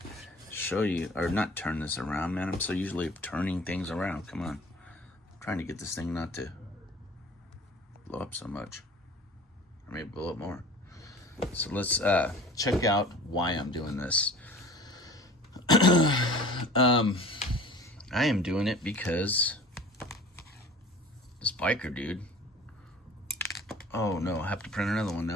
show you, or not turn this around, man. I'm so usually turning things around. Come on, I'm trying to get this thing not to blow up so much, or maybe blow up more. So let's check out why I'm doing this. I am doing it because this biker dude. Oh no, I have to print another one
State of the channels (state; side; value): normal; both; correlation 0.44